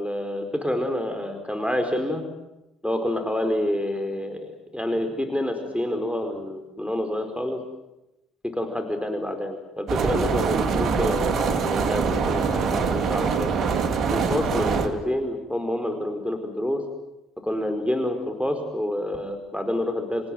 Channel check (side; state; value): both; normal; correlation 0.75